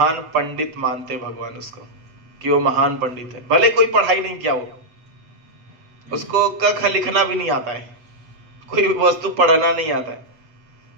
पंडित मानते भगवान उसको कि वो महान पंडित है। भले कोई पढ़ाई नहीं किया हो, उसको क ख लिखना भी नहीं आता है, कोई वस्तु पढ़ना नहीं आता है,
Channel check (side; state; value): left; late; 8.1 ms